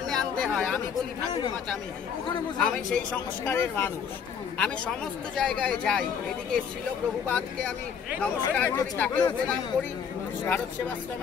আনতে হয়। আমি বলি ঠাকুরমা চামি, আমি সেই সংস্কারের মানুষ। আমি সমস্ত জায়গায় যাই, এদিকে ছিল প্রভুপাদকে আমি নমস্কার করি, তাকেও প্রণাম করি। ভারত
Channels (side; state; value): right; quieter; 7.1 dB